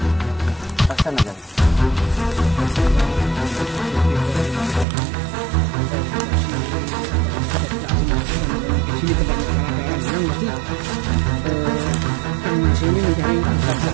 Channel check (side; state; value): left; drops out; at 4.9 s